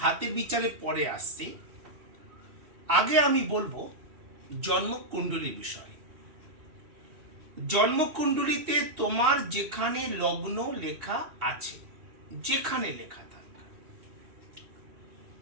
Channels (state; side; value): late; left; 2.7 ms